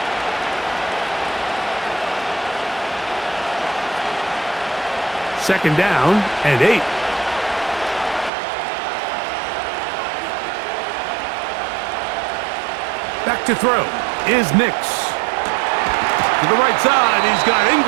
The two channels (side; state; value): left; drops out; at 8.3 s